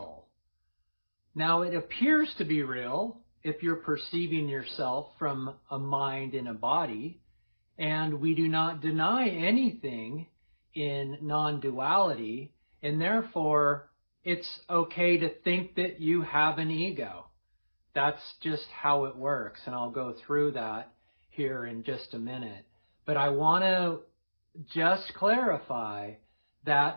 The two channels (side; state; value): both; inverted; correlation -1.00